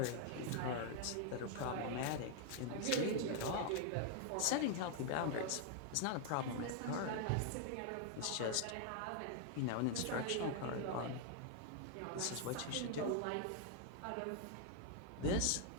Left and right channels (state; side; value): different; both; correlation 0.00